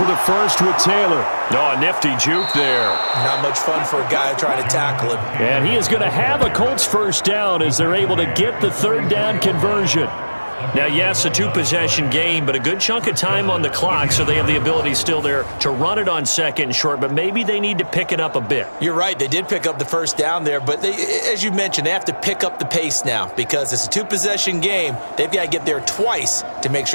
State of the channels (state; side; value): inverted; both; correlation -1.00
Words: the first with Taylor. Oh, a nifty juke there. Not much fun for a guy trying to tackle him. And he is going to have a Colts 1st down as they're able to get the 3rd down conversion. Now, yes, a 2-possession game, but a good chunk of time on the clock, so they have the ability still there to run it on 2nd and short, but maybe they need to pick it up a bit. You're right. They did pick up the 1st down there, but they, as you mentioned, they have to pick up the pace now because it's a 2-possession game. They've got to get there twice to make